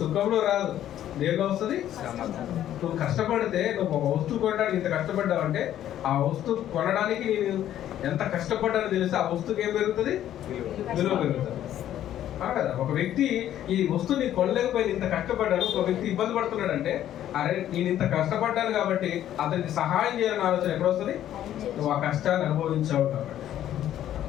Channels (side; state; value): right; quieter; 11.7 dB